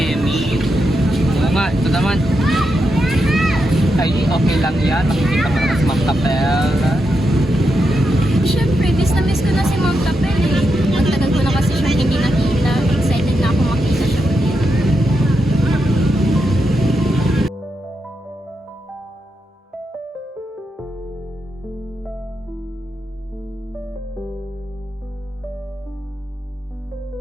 Oo nga, ito naman. Ay, okay lang yan. Makikita pa naman si Ma'am Tapel. Siyempre, miss ko na si Ma'am Tapel eh. Ang tagal ko na kasi siyang hindi nakita. Excited na ako makita siya ulit.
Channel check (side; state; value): both; normal; correlation 0.85